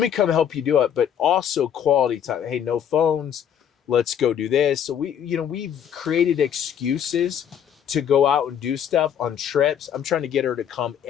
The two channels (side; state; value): right; quieter; 8.9 dB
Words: come help you do it. But also quality time. Hey, no phones. Let's go do this. So we've created excuses to go out and do stuff on trips. I'm trying to get her to come